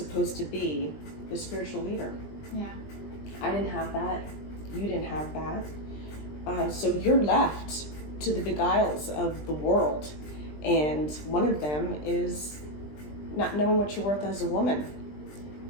to be the spiritual leader. Yeah. I didn't have that. You didn't have that. So you're left to the beguiles of the world. And one of them is not knowing what you're worth as a woman.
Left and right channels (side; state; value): right; late; 20 ms